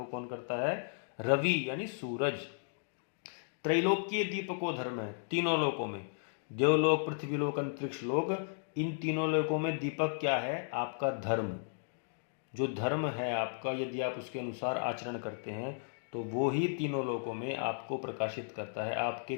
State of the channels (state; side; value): silent; right; digital silence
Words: कौन करता है? रवि यानी सूरज। त्रैलोक्य दीपको धर्म है, तीनों लोकों में, देवलोक, पृथ्वीलोक, अंतरिक्ष लोक, इन तीनों लोकों में दीपक क्या है? आपका धर्म। जो धर्म है आपका, यदि आप उसके अनुसार आचरण करते हैं तो वो ही तीनों लोकों में आपको प्रकाशित करता है, आपके